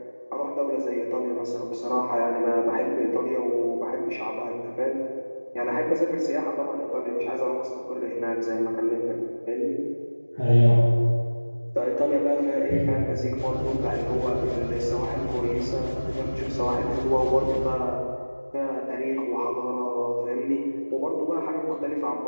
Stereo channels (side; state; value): both; inverted; correlation -1.00